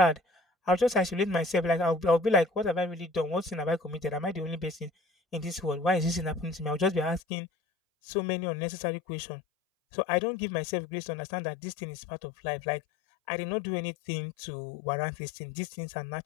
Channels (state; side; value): drops out; right; at 7.2 s